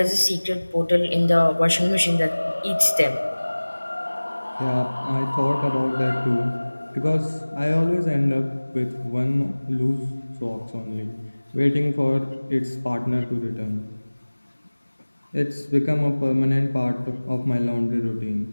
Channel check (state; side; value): inverted; both; correlation -1.00